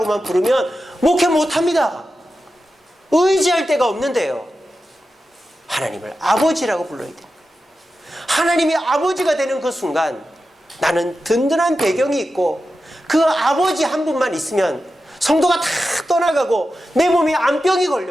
부르면 목회 못합니다. 의지할 데가 없는데요. 하나님을 아버지라고 불러야 돼요. 하나님이 아버지가 되는 그 순간 나는 든든한 배경이 있고 그 아버지 한 분만 있으면 성도가 다 떠나가고 내 몸에 암병이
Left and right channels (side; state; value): both; normal; correlation 0.91